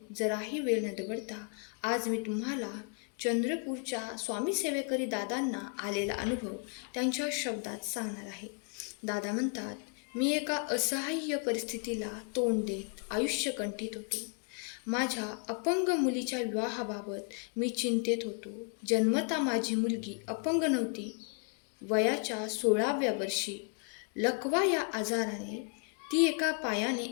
जराही वेळ न दवडता आज मी तुम्हाला चंद्रपूरच्या स्वामी सेवेकरी दादांना आलेला अनुभव त्यांच्या शब्दात सांगणार आहे. दादा म्हणतात, मी एका असहाय्य परिस्थितीला तोंड देत आयुष्य कंठीत होतो. माझ्या अपंग मुलीच्या विवाहाबाबत मी चिंतेत होतो. जन्मता माझी मुलगी अपंग नव्हती. वयाच्या 16व्या वर्षी लकवा या आजाराने ती एका पायाने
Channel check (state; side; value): quieter; right; 39.6 dB